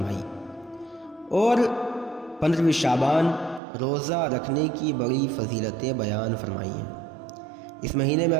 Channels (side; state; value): left; drops out; at 3.6 s